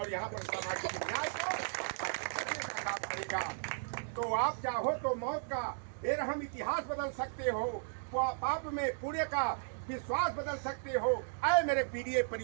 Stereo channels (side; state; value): left; silent; digital silence